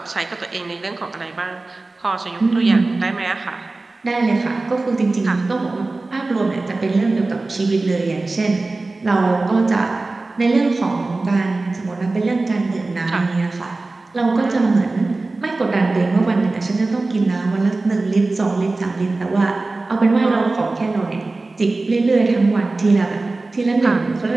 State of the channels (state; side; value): quieter; left; 3.3 dB